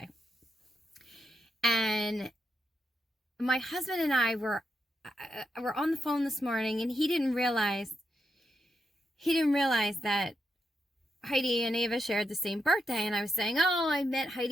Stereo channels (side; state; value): both; normal; correlation 0.84